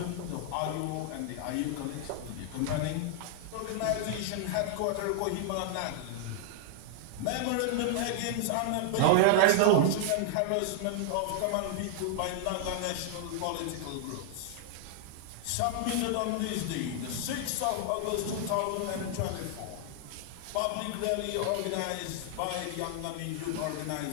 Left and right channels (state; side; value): different; both; correlation -0.01